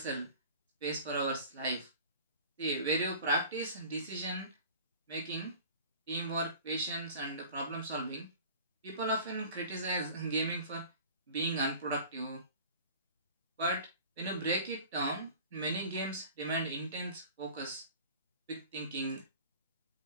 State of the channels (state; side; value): inverted; both; correlation -0.42